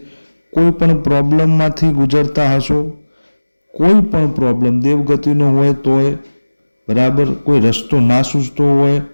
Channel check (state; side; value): inverted; both; correlation -1.00